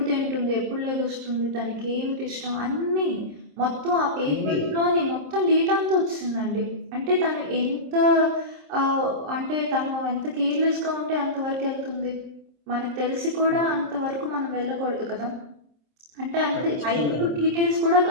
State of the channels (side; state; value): left; late; 26 ms